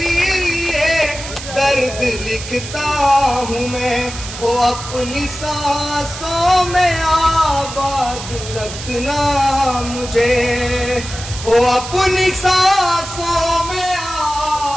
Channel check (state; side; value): noise; right; hiss, 10 dB below the sound